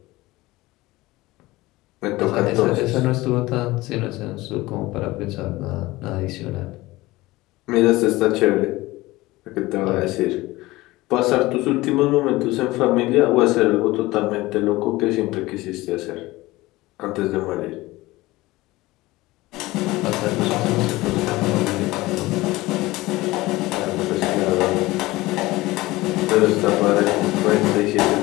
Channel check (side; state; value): right; quieter; 19.5 dB